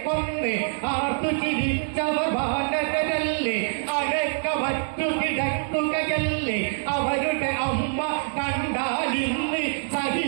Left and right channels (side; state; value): left; silent; 62 dB below the other